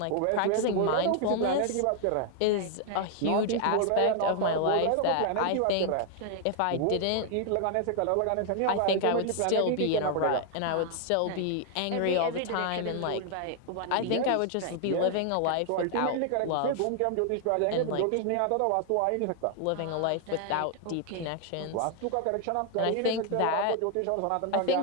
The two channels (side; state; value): both; different; correlation 0.00